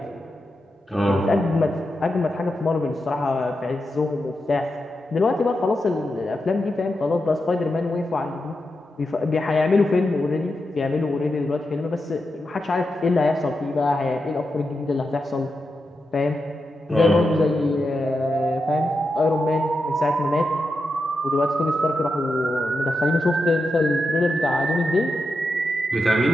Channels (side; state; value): both; normal; correlation 0.88